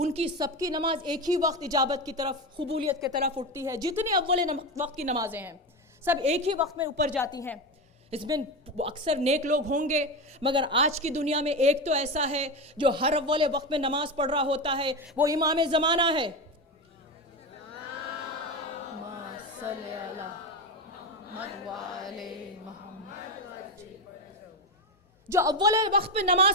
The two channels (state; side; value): normal; both; correlation 0.17